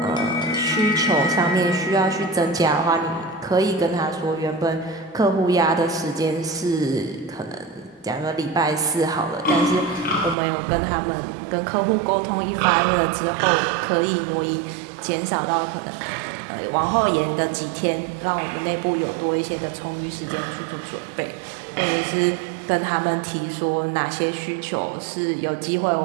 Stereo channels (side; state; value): left; drops out; at 10.4 s